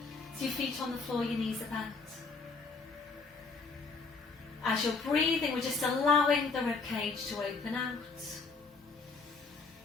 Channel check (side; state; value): right; quieter; 4.3 dB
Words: so your feet on the floor, your knees are bent. As you're breathing, we're just allowing the ribcage to open out.